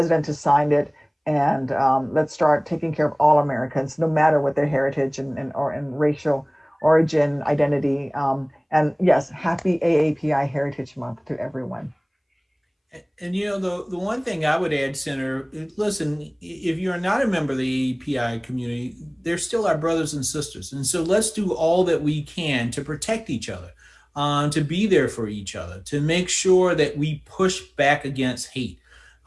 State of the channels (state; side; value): identical; both; correlation 1.00